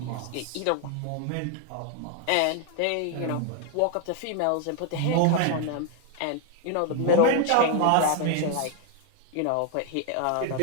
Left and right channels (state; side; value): different; both; correlation 0.01